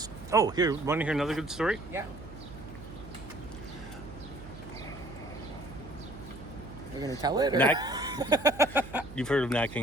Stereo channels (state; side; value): noise; right; hum, 15 dB below the sound